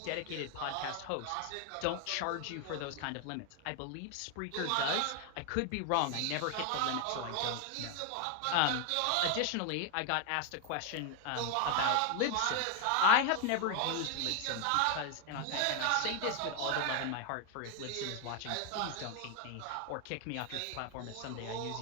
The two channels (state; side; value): different; both; correlation 0.01